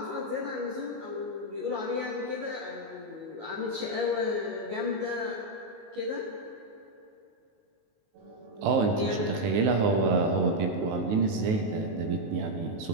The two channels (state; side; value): late; left; 19 ms